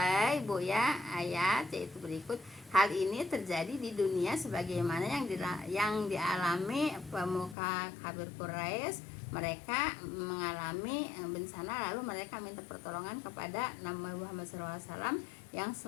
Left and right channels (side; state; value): right; drops out; at 7.6 s